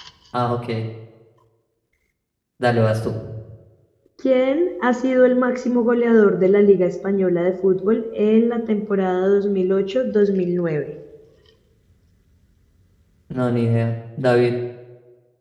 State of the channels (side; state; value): both; identical; correlation 1.00